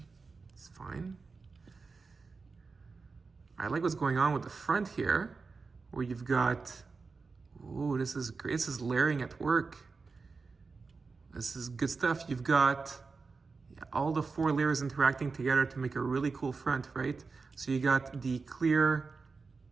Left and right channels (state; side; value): quieter; left; 4.5 dB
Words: fine. I like what's going on with the front here, where you've got, ooh, this is great. This is layering at work. This is good stuff. You've got all the 4 layers interacting together to make a really cool front, right? So you got the clear